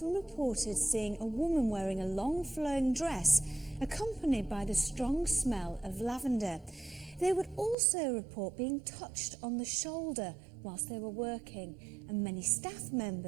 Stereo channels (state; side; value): drops out; left; at 7.8 s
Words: reported seeing a woman wearing a long flowing dress accompanied by the strong smell of lavender. They would also report being touched on the shoulder whilst they were working, and many staff